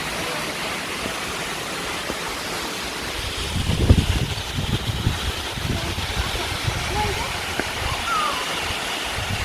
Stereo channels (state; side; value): identical; both; correlation 1.00